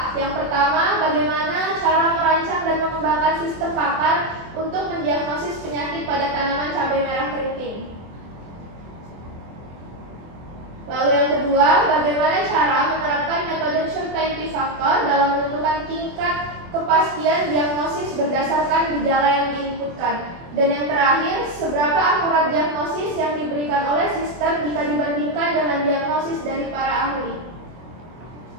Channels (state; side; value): late; left; 24 ms